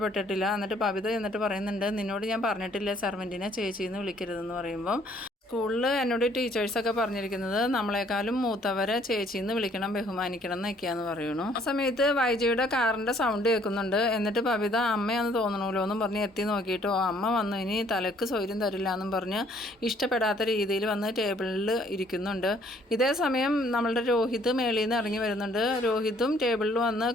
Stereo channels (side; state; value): both; normal; correlation 0.62